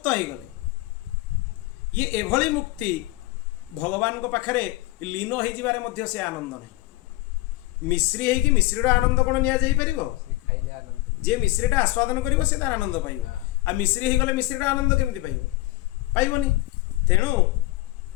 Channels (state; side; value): quieter; right; 19.2 dB